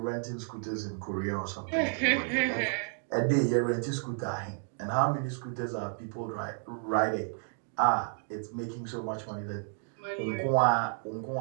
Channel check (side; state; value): left; silent; 57 dB below the other